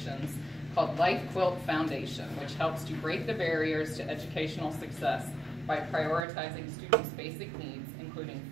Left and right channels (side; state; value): left; drops out; at 6.2 s